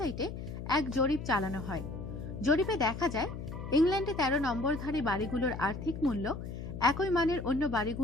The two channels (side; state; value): left; noise; hum, 8 dB below the sound